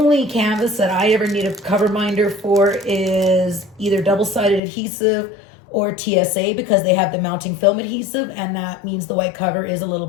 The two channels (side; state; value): right; drops out; at 4.6 s